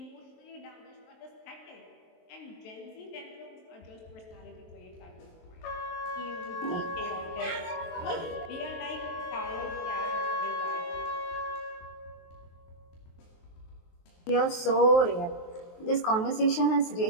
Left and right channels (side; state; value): right; late; 23 ms